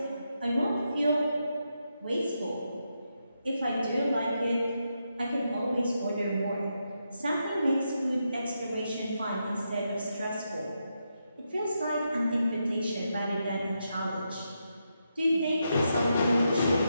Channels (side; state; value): both; inverted; correlation -0.84